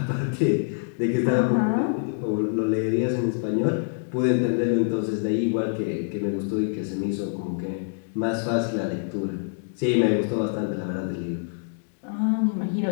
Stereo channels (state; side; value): silent; right; digital silence